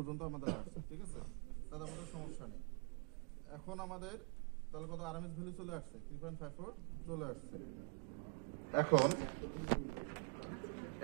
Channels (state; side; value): quieter; left; 36.0 dB